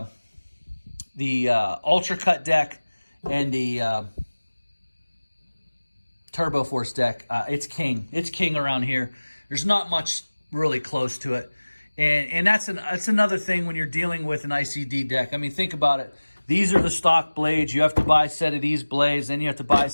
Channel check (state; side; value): inverted; both; correlation -1.00